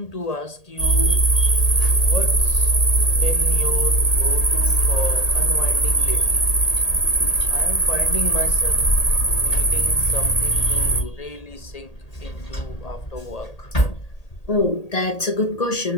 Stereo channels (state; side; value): late; right; 1.8 ms